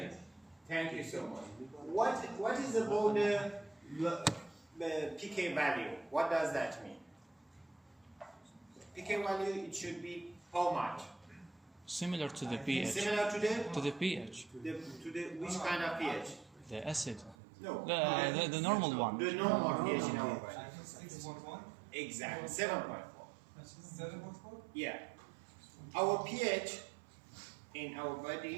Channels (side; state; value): left; drops out; at 17.4 s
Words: Thank you so much. What is about the pK value? What does that mean? pK value, it should be how much? Similar to the pH. Similar to the pH. which kind of pH? The acid. No. The normal one. The normal pH in our body. 6.1. Exactly. 7.4. 7.4. Yeah. Our pH in our